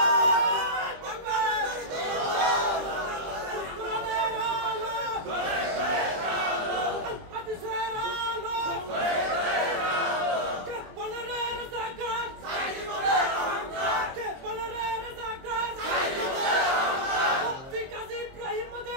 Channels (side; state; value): left; late; 23 ms